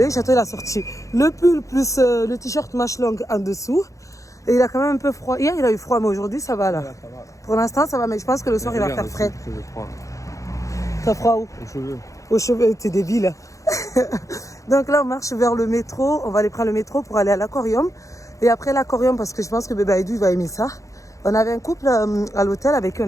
Château, il a sorti le pull plus le t-shirt manche longue en dessous. Et il a quand même un peu froid. Hier, il a eu froid, mais aujourd'hui, ça va là. Ça va. Pour l'instant, ça va, mais je pense que le soir, il va faire frais. T'as froid où? Aux cheveux. Aux cheveux, t'es débile. Donc là, on marche vers le métro. On va aller prendre le métro pour aller à l'aquarium. Et après l'aquarium, parce que je pense que Bébé Aïdou, il va aimer ça. On avait un couple à l'hôtel avec qui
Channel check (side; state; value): right; late; 0.15 ms